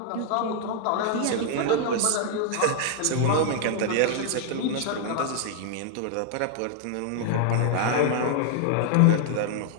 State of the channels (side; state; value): both; different; correlation 0.00